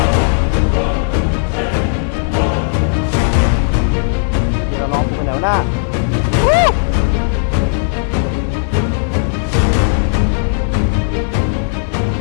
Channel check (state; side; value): silent; right; 70 dB below the other